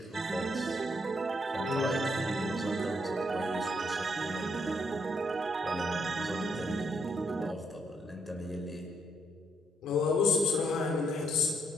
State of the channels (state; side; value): normal; both; correlation 0.75